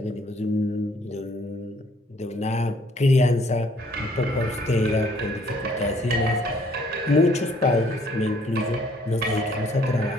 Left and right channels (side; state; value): both; normal; correlation 0.62